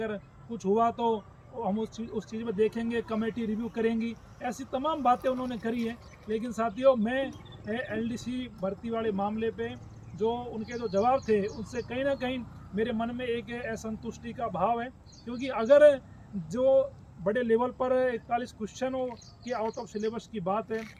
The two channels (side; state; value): both; identical; correlation 1.00